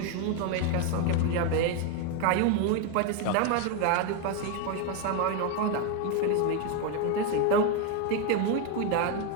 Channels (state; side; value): different; both; correlation 0.02